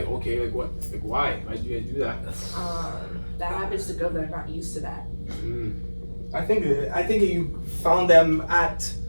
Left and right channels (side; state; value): both; inverted; correlation -1.00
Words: okay, like what? Like, why? Why did you guys do that? That happens to girls that are not used to that. I think you found them at